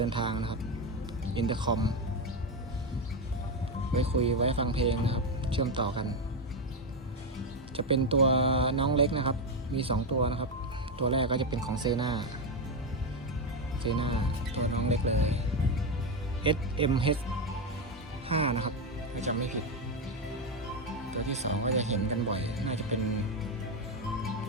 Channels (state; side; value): normal; both; correlation 0.08